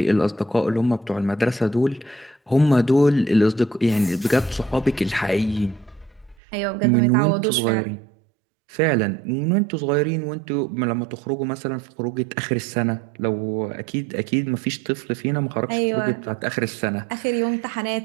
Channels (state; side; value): drops out; left; at 6.4 s